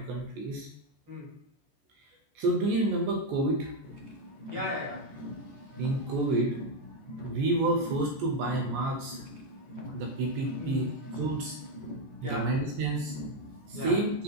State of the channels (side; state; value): left; late; 14 ms